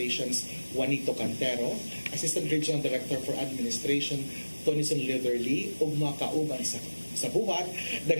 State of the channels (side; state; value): both; inverted; correlation -1.00